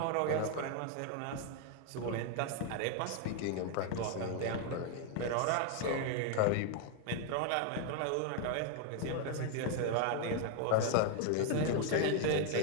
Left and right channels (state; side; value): different; both; correlation 0.01